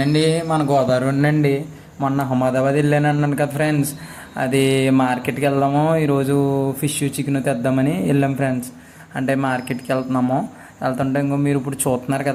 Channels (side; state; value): both; identical; correlation 1.00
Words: మన గోదావరి అండి. మొన్న అహ్మదాబాద్ వెళ్ళాను అన్నాను కదా ఫ్రెండ్స్. అది మార్కెట్కి వెళ్దాము ఈరోజు, ఫిష్ చికెన్ తెద్దామని వెళ్ళాం ఫ్రెండ్స్. అంటే మార్కెట్కి వెళ్తున్నాము. వెళ్తుంటే ఇంకో మీరు ఇప్పుడు చూస్తున్నారు